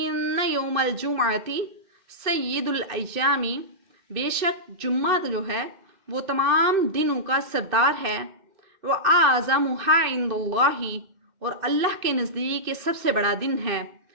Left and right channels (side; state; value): left; late; 2.1 ms